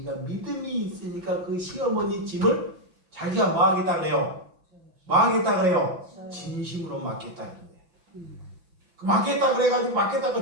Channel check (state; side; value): late; left; 5.9 ms